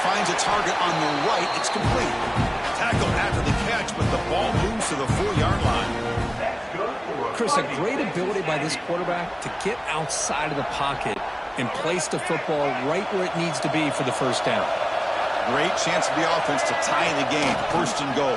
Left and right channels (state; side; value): identical; both; correlation 1.00